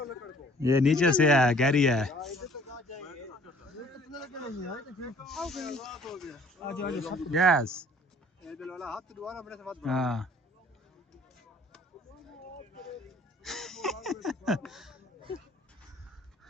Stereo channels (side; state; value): both; normal; correlation 0.55